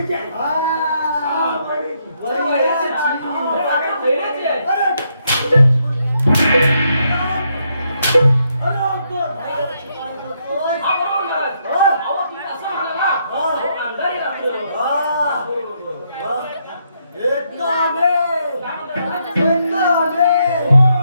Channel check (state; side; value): inverted; both; correlation -0.76